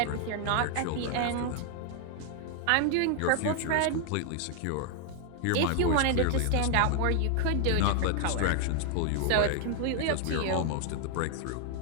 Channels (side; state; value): both; different; correlation 0.00